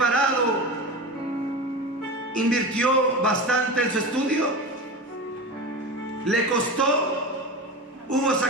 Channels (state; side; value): normal; both; correlation 0.26